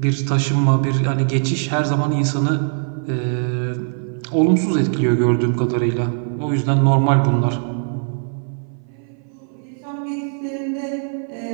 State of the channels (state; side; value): silent; left; 58 dB below the other